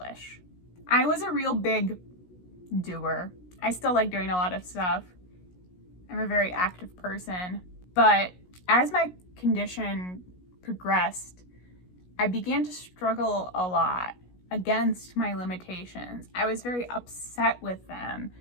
I was a real big doer. I still like doing a lot of stuff. I'm a very active person. But as my condition progressed, I began to struggle a lot against my limitations. I was very upset with them.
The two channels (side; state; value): right; late; 17 ms